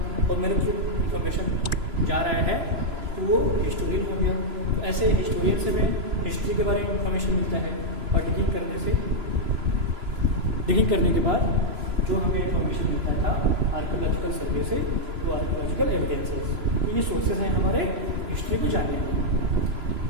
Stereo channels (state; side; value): late; left; 3.0 ms